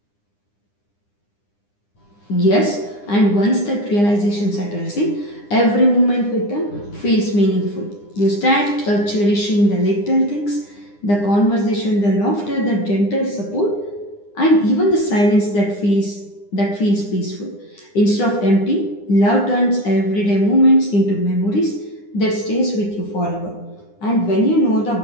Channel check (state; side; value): late; right; 9.9 ms